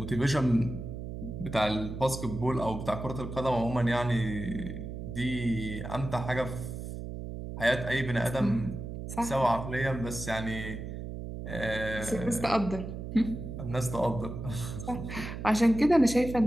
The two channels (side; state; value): right; noise; hum, 7 dB below the sound